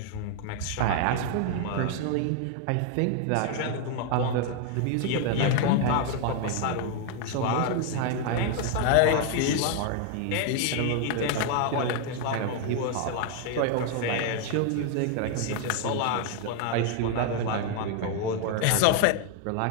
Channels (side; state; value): both; different; correlation 0.00